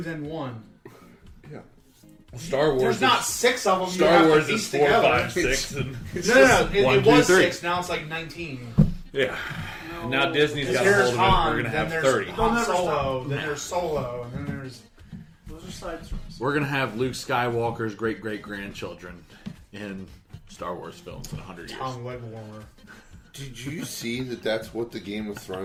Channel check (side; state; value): both; identical; correlation 1.00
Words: then 1. Yeah. Star Wars. There's not 6 of them. Star Wars is 4, 5, 6, and No. It 1, 2, was 3. 6. Now it's like 19. Yeah. And now Disney's got a There's hold of it. Han, We're going to then have there's 30. Han never Solo, stop. then there's Solo, and then there's... Those are side stories. We're going to have Luke Skywalker's great-great-grandchildren in Star Wars films in 100 years. Tom leg warmer. Did you see that that's what the Game of